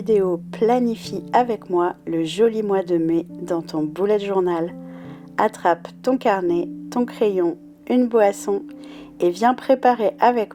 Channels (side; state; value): both; identical; correlation 1.00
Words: Planifie avec moi le joli mois de mai dans ton bullet journal. Attrape ton carnet, ton crayon, une boisson et viens préparer